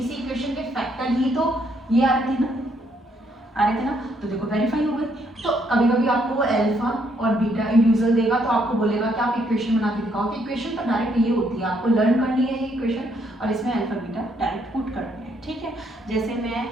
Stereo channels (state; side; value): normal; both; correlation 0.71